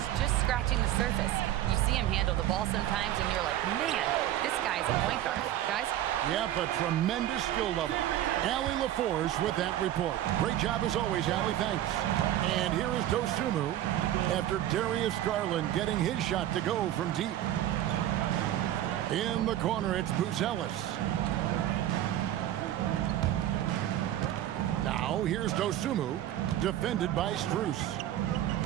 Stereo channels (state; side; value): quieter; left; 12.7 dB